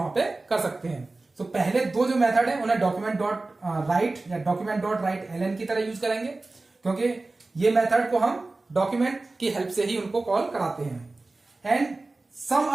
पे कर सकते हैं। तो पहले दो जो मेथड है उन्हें डॉक्यूमेंट डॉट राइट या डॉक्यूमेंट डॉट राइट एलएन की तरह यूज करेंगे, क्योंकि ये मेथड को हम डॉक्यूमेंट की हेल्प से ही उनको कॉल कराते हैं। And some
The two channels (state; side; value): quieter; left; 3.2 dB